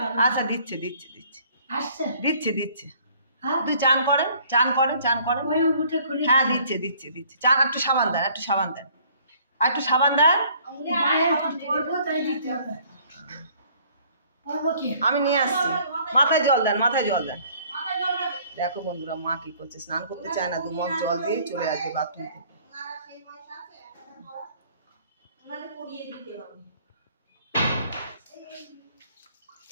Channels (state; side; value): inverted; both; correlation -0.58